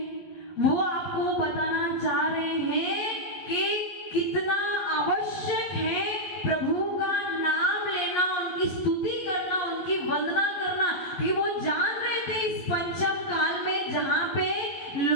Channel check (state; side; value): late; right; 11 ms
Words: वो आपको बताना चाह रहे हैं कि कितना आवश्यक है प्रभु का नाम लेना, उनकी स्तुति करना, उनकी वंदना करना। कि वो जान रहे थे इस पंचम काल में जहां पे